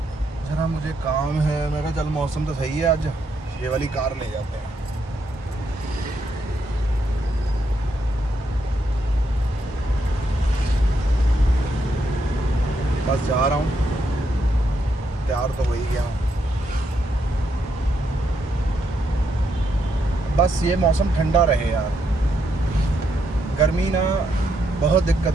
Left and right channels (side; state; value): both; normal; correlation 0.78